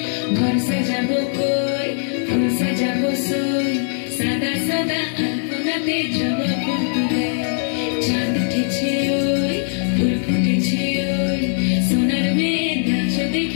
ঘর সাজাবো কই ফুল সাজাবো সই সাদা সাদা আলপনাতে জবা ফুল তুলে চাঁদ উঠেছে ওই ফুল ফুটেছে ওই সোনার মেয়ে নাচ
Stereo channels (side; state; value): right; silent; digital silence